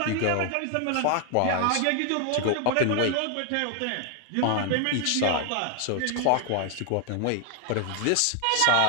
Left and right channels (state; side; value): different; both; correlation 0.00